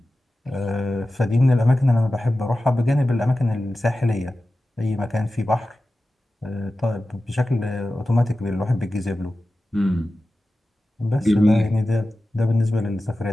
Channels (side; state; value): both; normal; correlation 0.94